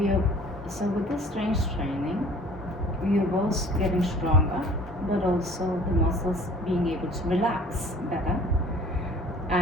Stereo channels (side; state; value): both; normal; correlation 0.50